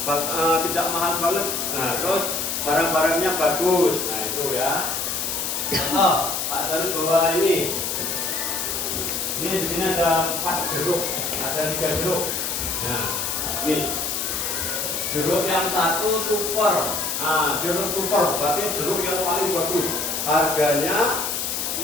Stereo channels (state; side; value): noise; left; hiss, 2 dB below the sound